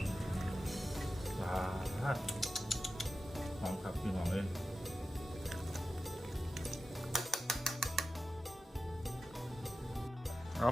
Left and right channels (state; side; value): normal; both; correlation 0.93